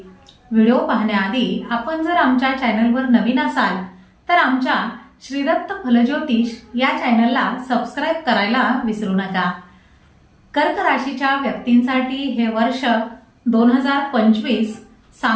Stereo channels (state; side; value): identical; both; correlation 1.00